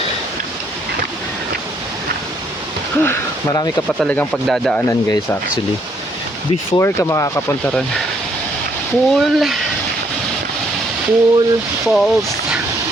Marami ka pa talagang pagdadaanan guys actually. Before ka makakapunta ron. Pool falls.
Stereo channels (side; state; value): both; normal; correlation 0.69